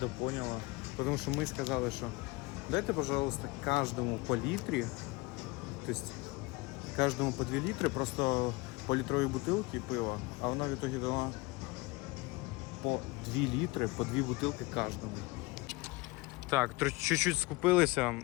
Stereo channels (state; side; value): quieter; right; 23.8 dB